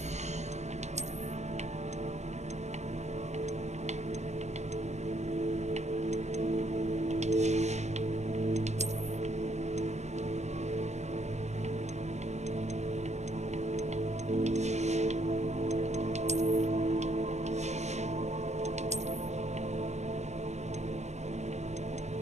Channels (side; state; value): left; late; 0.33 ms